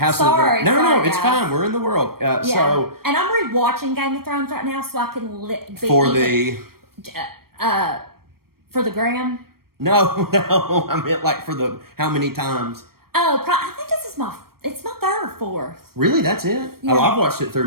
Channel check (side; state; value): left; late; 0.94 ms